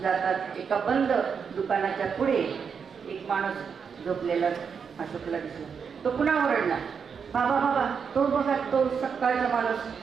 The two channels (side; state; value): left; quieter; 6.4 dB